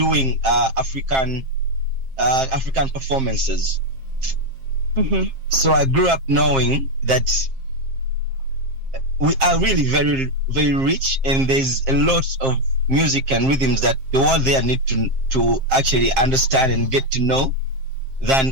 African performances. So I grew up knowing that we are really very, very rich, and there's a lot of music and rhythms that the world there need to actually understand and get to know than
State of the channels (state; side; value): late; left; 7.5 ms